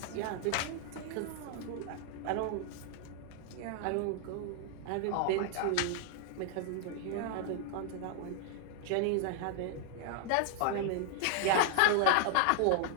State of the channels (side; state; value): both; different; correlation 0.00